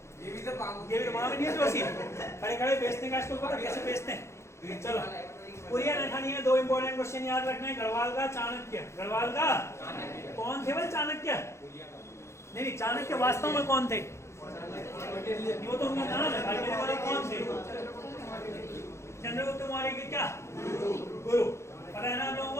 ये भी तो वहां नहीं है जोशी, खड़े खड़े बेचने का, इसको पता कैसे बेचते हैं। चलो पुरिया नैथानी है। 2 इंपॉर्टेंट क्वेश्चन याद रखना है। गढ़वाल का चाणक्य। गढ़वाल का कौन थे भाई? चाणक्य नहीं, चाणक्य वास्तव में कौन थे? वो तो उनका नाम है भाई, मेरे वाले कौन थे? चंद्रगुप्त मौर्य के क्या गुरु। पता है ना हम लोगों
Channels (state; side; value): late; right; 0.13 ms